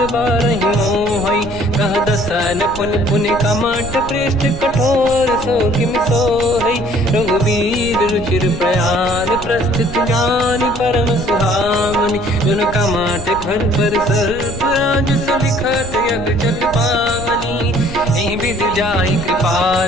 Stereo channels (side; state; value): right; noise; rumble, 13 dB below the sound